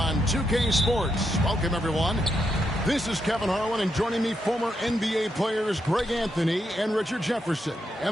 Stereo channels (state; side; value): normal; both; correlation 0.82